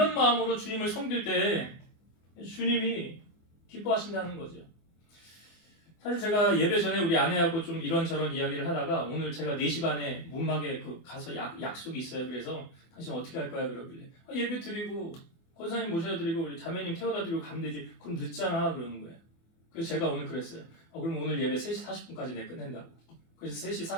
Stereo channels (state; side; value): late; right; 24 ms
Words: 마음으로 주님을 섬길 때 주님이 기뻐하신다는 거죠. 사실 제가 예배 전에 우리 아내하고 좀 이런저런 이야기를 하다가 오늘 제가 4시 반에 문막에 가서 약속이 있어요. 그래서 당신 어떻게 할 거야? 그러길래 예배 드리고 권사님 모셔다 드리고 우리 자매님 태워다 드리고 가면 되지. 그럼 늦잖아 그러는 거예요. 그래서 제가 오늘 그랬어요. 그럼 오늘 예배 3시 40분까지 내 끝낸다고. 그래서 3시